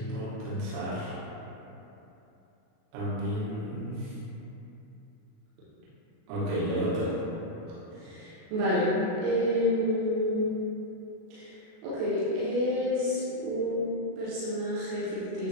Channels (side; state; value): left; late; 37 ms